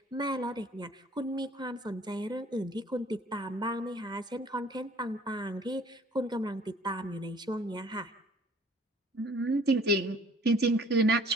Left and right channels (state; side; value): normal; both; correlation 0.54